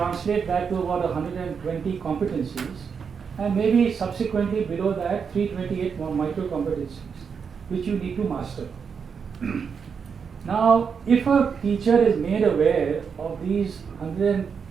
that to about 120 competencies, and maybe subsequently below that 328 more micro competencies, which you need to master. Now, if a teacher is made aware of these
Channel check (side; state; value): left; quieter; 6.3 dB